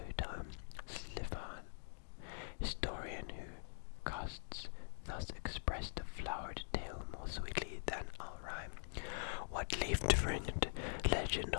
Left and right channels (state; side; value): silent; right; digital silence